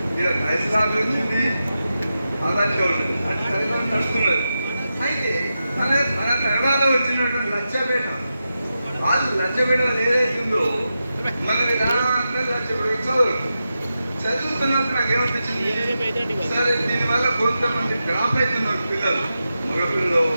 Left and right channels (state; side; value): inverted; both; correlation -0.90